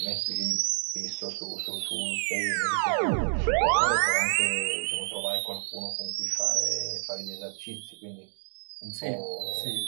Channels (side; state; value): left; silent; digital silence